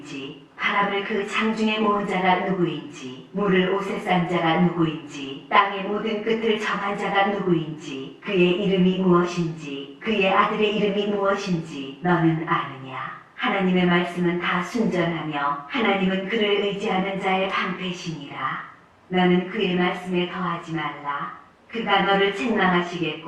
바람을 그 장중에 모은 자가 누구인지 물을 옷에 싼 자가 누구인지 땅의 모든 끝을 정한 자가 누구인지 그의 이름이 무엇인지 그의 아들의 이름이 무엇인지 너는 아느냐. 하나님의 말씀은 다 순전하며 하나님은 그를 의지하는 자의 방패시니라. 너는 그의 말씀에 더하지 말라. 그가 너를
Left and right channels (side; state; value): both; identical; correlation 1.00